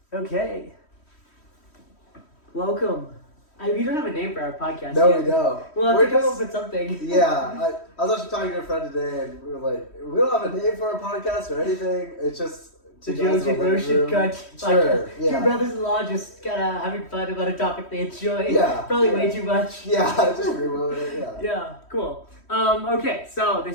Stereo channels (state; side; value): late; right; 3.1 ms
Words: Okay. Welcome. We don't have a name for our podcast No, yet. we don't. We'll have We're to come just- up with something. Yeah, I was actually talking to a friend today, and we were like, we don't have a name for our podcast or anything. It's just The two guys Josie in a living Motion room. Cut Sure, podcast. yeah. Two brothers-in-law just kind of having fun about a topic they enjoy. Yeah, Probably yeah. way too much. Yeah, just reload it. Yeah. Yeah, cool. Okay, so